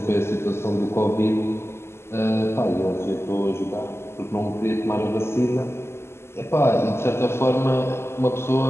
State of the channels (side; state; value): right; late; 0.12 ms